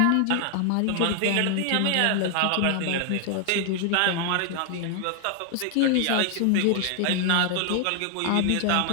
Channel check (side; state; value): both; different; correlation 0.00